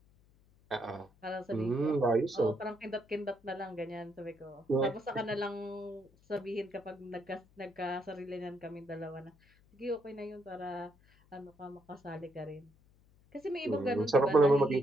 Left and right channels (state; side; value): noise; left; hum, 30 dB below the sound